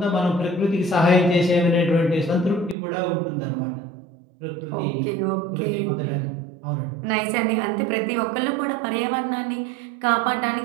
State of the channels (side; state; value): left; drops out; at 2.8 s